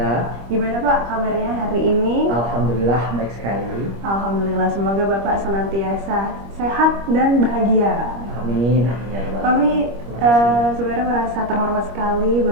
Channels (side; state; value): left; late; 25 ms